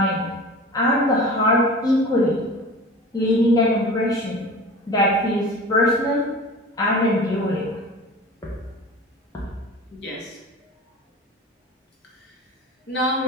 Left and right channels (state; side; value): normal; both; correlation 0.37